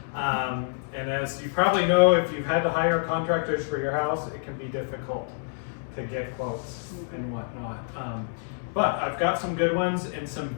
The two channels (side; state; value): right; silent; digital silence